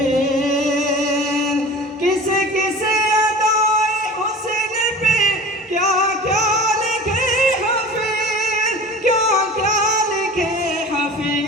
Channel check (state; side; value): normal; both; correlation 0.39